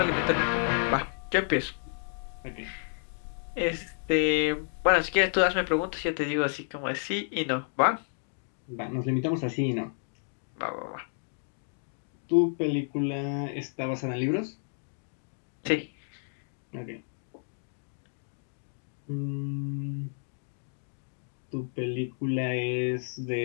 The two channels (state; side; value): silent; right; 57 dB below the other